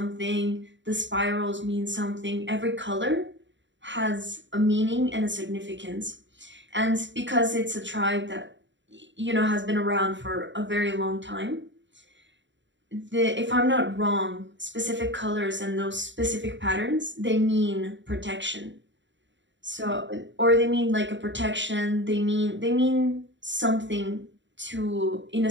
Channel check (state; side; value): late; left; 0.54 ms